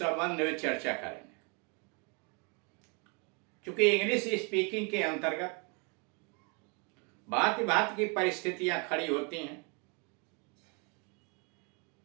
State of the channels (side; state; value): left; quieter; 33.7 dB